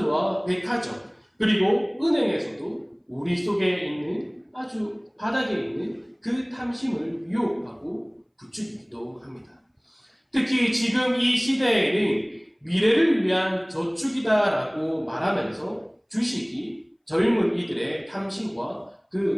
백화점, 그리고 은행에서도 우리 속에 있는 아주 바닥에 있는 그 탐심을 유혹하고 부추기기도 합니다. 특히 지금 이 시대에는 미래를 위한 저축이다라고 말하면서 주식이 젊은 이들의 탐심과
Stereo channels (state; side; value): identical; both; correlation 1.00